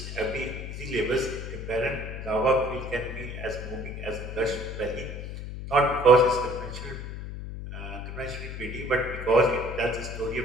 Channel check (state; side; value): noise; left; hum, 8 dB below the sound